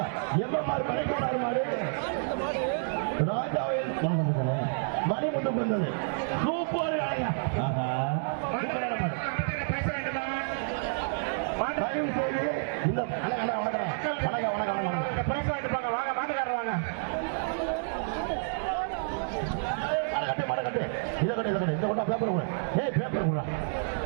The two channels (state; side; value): silent; left; digital silence